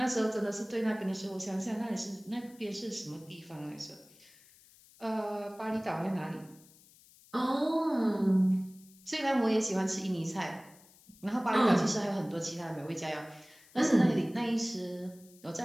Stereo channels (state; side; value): noise; left; hiss, 26 dB below the sound